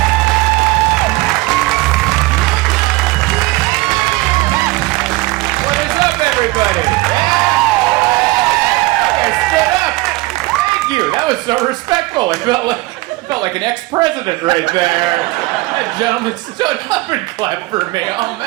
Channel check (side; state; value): left; quieter; 21.2 dB